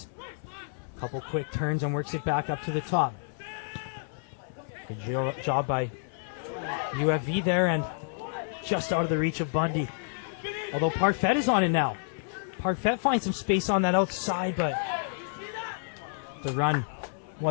Couple quick turns and works it back up to the top. Good job by UFV there, and just out of the reach of Bundy. Although Parfait is on it now. Parfait finds some space on that outside, but the run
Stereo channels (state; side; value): silent; right; 58 dB below the other